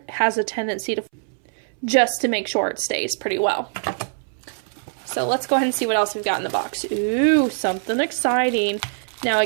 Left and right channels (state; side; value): silent; left; 61 dB below the other